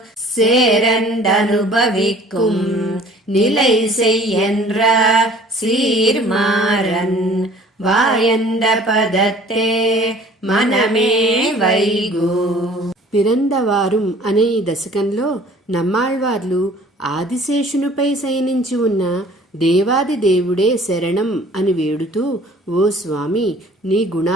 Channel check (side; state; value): both; normal; correlation 0.51